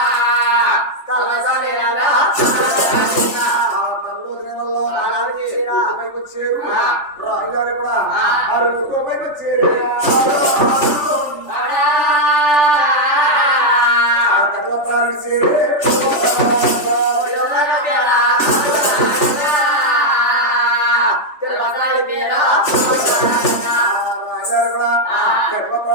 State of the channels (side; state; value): right; late; 3.4 ms